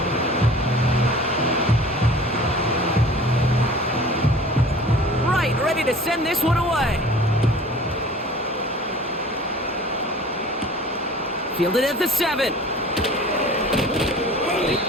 Right, ready to send this one away. Fielded at the 7.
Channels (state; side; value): normal; both; correlation 0.44